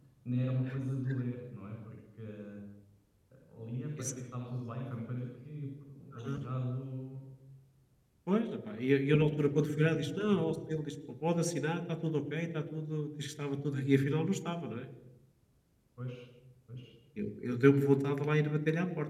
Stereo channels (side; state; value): both; identical; correlation 1.00